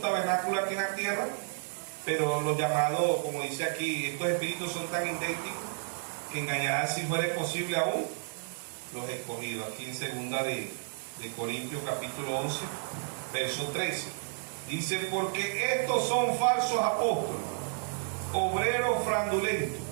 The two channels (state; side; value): silent; left; 57 dB below the other